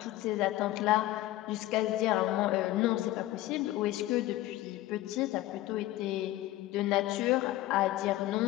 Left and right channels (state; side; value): quieter; right; 15.9 dB